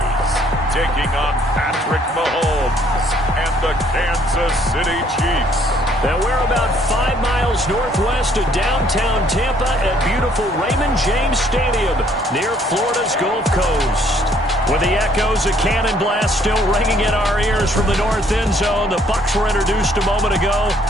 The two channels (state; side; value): normal; both; correlation 0.64